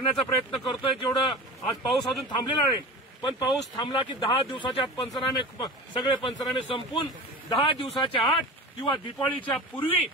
प्रयत्न करतोय. जेवढं आज पाऊस अजून थांबलेला नाही, पण पाऊस थांबला की 10 दिवसाच्या आत पंचनामे सगळे पंचनामे संपून 10 दिवसाच्या आत किंवा दिवाळीच्या पूर्वी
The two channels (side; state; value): both; normal; correlation 0.33